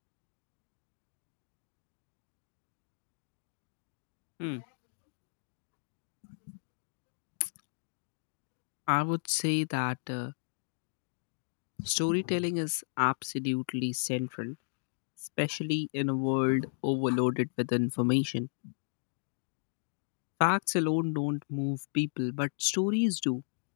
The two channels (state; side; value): silent; right; digital silence